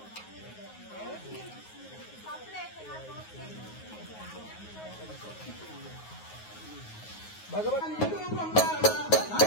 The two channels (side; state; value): right; late; 9.5 ms